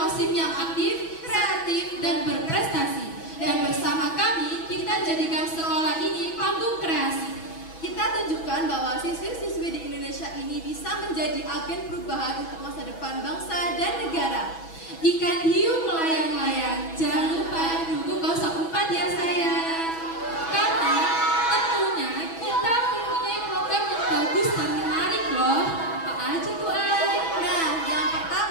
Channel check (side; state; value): right; late; 6.1 ms